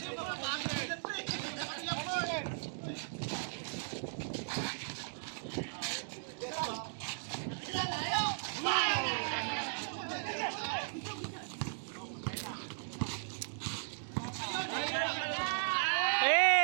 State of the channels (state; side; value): silent; left; digital silence